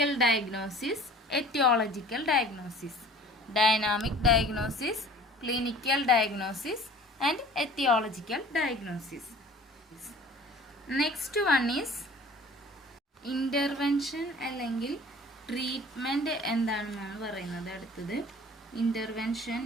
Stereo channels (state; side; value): normal; both; correlation 0.47